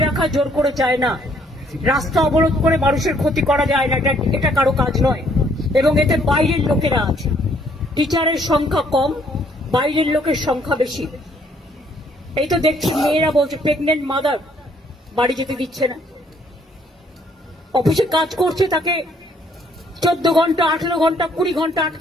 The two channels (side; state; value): both; normal; correlation 0.65